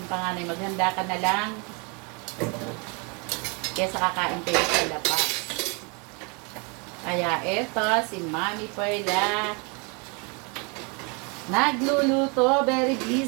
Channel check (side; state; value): left; quieter; 32.4 dB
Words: panganay, maghanda ka na lang kesa kakain kayo sa labas. Kaya eto, si Mami Perla, nagluluto, very